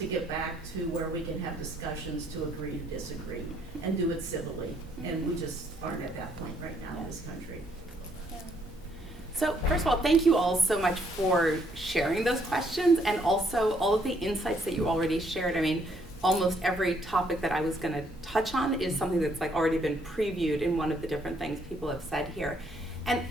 get back to where we can have discussions to agree to disagree and do it civilly. And we just aren't at that point right now in this country. So first of all, thank you all so much for sharing those questions and also all of the insights that you already shared. I mean, almost every topic that I was going to touch on is something that's like already been previewed in one of the different things people have said here. And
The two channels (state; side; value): normal; both; correlation 0.69